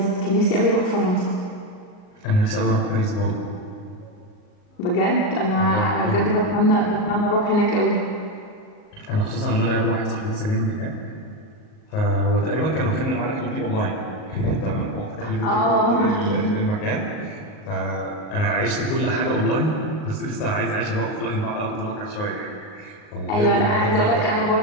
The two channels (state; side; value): late; right; 38 ms